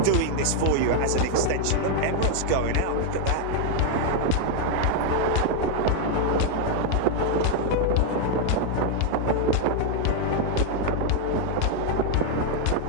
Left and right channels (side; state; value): both; different; correlation 0.01